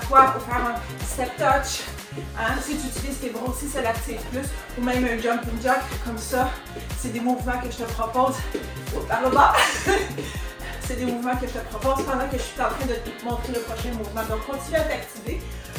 pour faire un step touch. Hein? Si tu utilises tes bras aussi, ça l'active plus. Ou même un jumping jack comme ça. C'est des mouvements que je te propose. Par le bas. C'est des mouvements que je te propose pendant que je suis en train de te montrer le prochain mouvement. Donc, continue à t'activer.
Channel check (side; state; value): both; identical; correlation 1.00